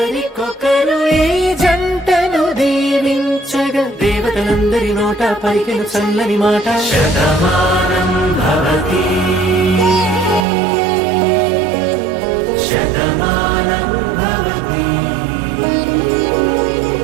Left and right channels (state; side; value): drops out; left; at 10.5 s